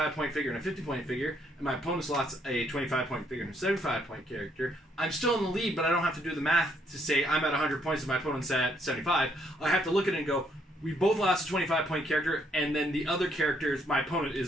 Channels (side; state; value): both; normal; correlation 0.71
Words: figure and a 50-point figure, and my opponent's lost a 25-point figure and a 75-point character, I'm still in the lead, but I don't have to do the math to say I'm at 100 points and my opponent's at 75. I have to look at it and go, we both lost a 25-point character, and then the other characters, my opponent